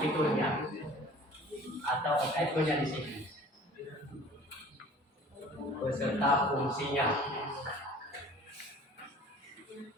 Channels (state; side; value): normal; both; correlation 0.47